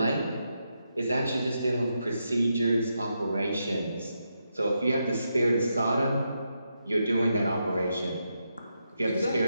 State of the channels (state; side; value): inverted; both; correlation -0.84